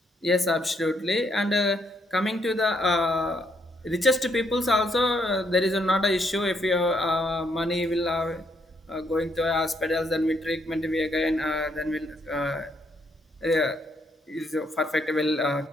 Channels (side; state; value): both; normal; correlation 0.73